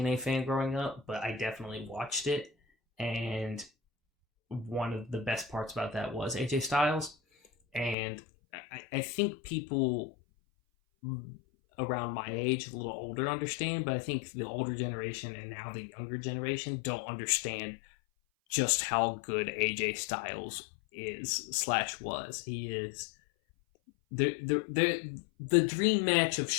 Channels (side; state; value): right; drops out; at 8.0 s